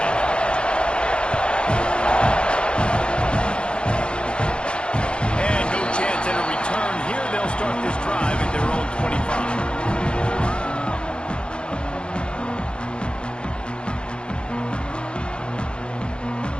And no chance at a return here. They'll start this drive at their own 25.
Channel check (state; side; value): late; right; 0.055 ms